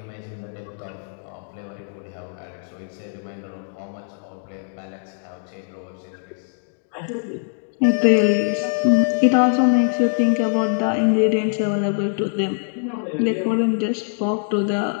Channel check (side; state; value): right; silent; 64 dB below the other